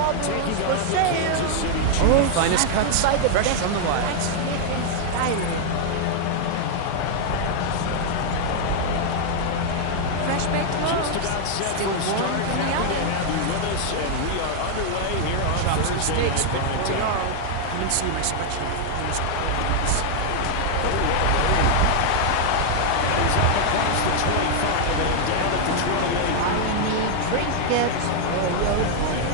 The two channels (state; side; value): different; both; correlation 0.00